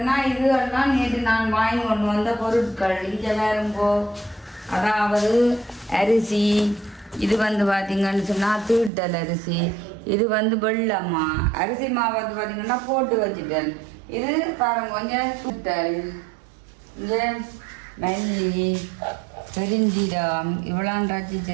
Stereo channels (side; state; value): left; drops out; at 8.9 s